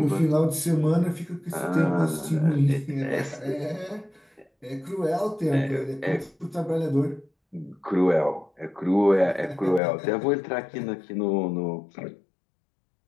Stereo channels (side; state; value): right; drops out; at 9.8 s